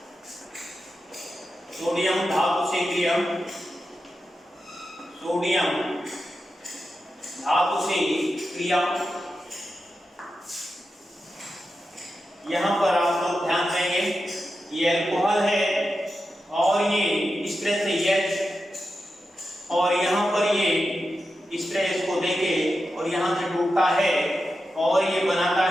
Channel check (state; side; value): normal; both; correlation 0.90